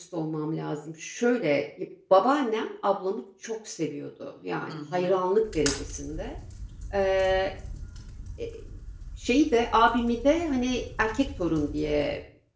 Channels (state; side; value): identical; both; correlation 1.00